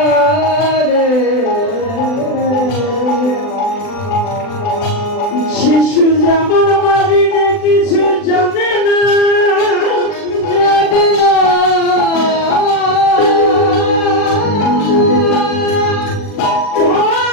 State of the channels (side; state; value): right; late; 39 ms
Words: শিশু যেমন মারিনে কিছু জানে না